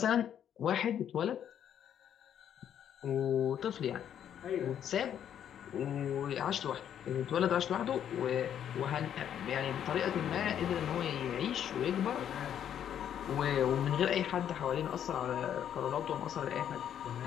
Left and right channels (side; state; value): right; quieter; 9.6 dB